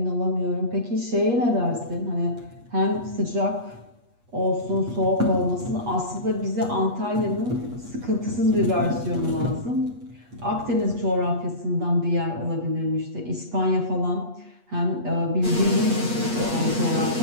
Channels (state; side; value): late; left; 8.3 ms